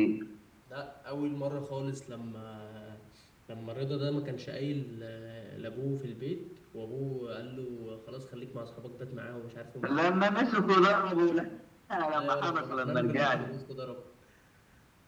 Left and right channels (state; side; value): identical; both; correlation 1.00